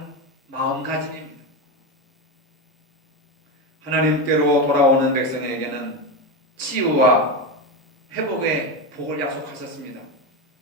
마음가짐입니다. 하나님께로 돌아오는 백성에게는 치유와 회복의 복을 약속하셨습니다.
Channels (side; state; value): both; normal; correlation 0.15